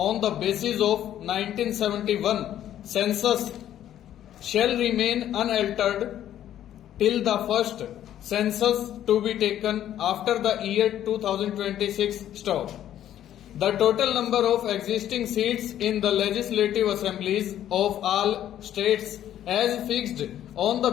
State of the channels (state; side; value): quieter; right; 11.4 dB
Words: the basis of 1971 census shall remain unaltered till the first census to be taken after the year 2026. Stop. The total number of existing seats in the legislative assemblies of all states as fixed on the